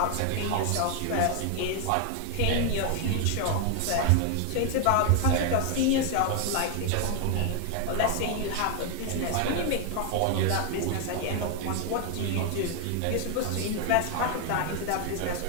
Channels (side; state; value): both; different; correlation 0.00